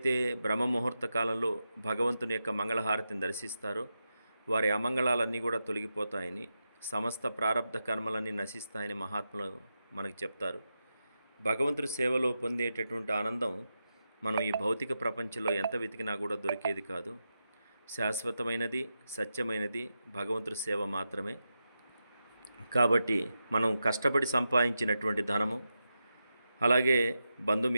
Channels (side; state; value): both; inverted; correlation -0.89